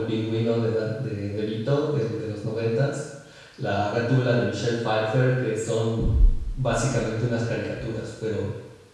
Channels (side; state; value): both; identical; correlation 1.00